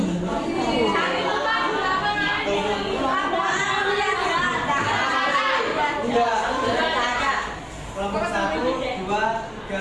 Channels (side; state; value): both; identical; correlation 1.00